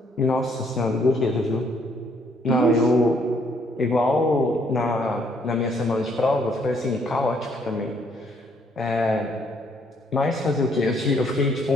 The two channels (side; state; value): both; normal; correlation 0.68